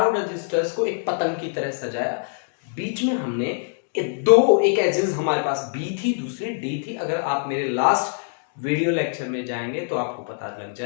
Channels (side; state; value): right; silent; digital silence